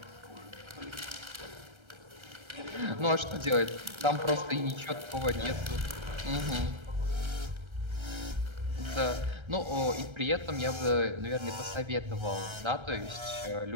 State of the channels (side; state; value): left; late; 1.3 ms